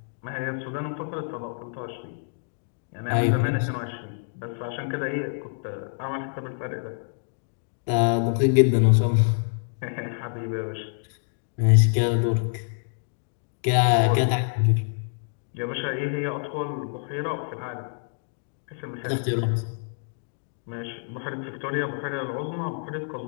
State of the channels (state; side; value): silent; right; digital silence